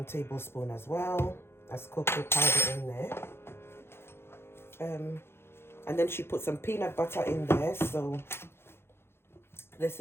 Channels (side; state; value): right; late; 0.12 ms